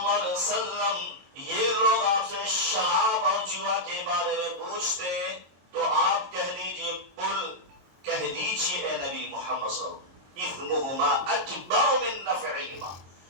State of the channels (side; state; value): left; late; 22 ms